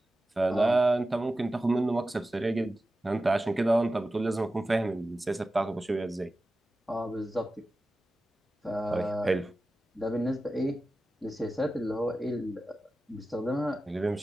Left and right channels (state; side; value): normal; both; correlation 0.94